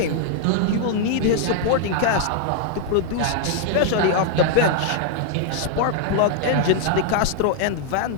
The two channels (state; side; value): different; both; correlation 0.00